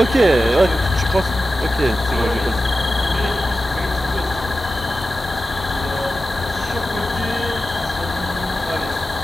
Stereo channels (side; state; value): both; normal; correlation 0.93